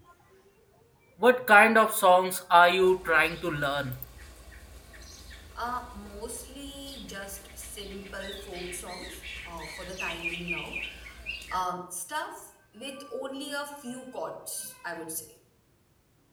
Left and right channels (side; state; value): both; identical; correlation 1.00